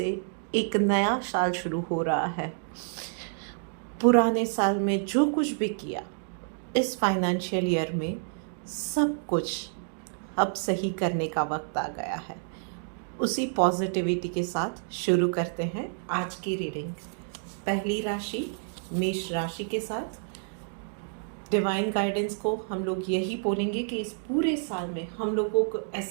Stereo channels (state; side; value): silent; left; digital silence